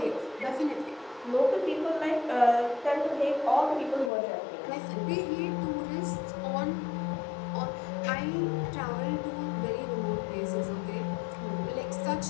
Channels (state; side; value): drops out; right; at 4.1 s